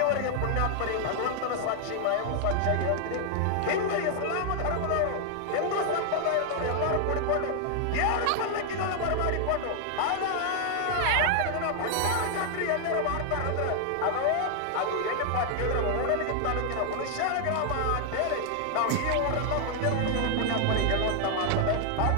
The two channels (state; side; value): different; both; correlation 0.00